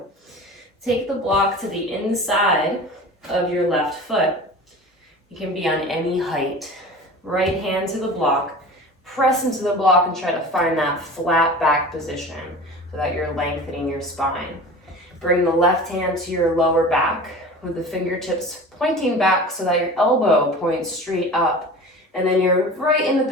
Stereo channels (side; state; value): both; normal; correlation 0.37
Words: Take the block to the inside of your left foot. You can be on any height. Right hand to the block, press into the block and try to find that flat back position so that you're lengthening your spine. Bring the left hand to your lower back with the fingertips pointing back so that your elbow points straight up. And then you're right in the